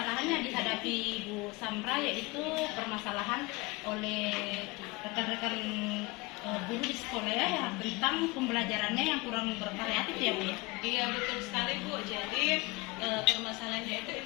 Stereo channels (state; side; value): quieter; right; 24.8 dB